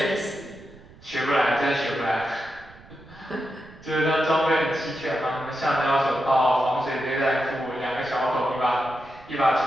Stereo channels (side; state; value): right; noise; rumble, 23 dB below the sound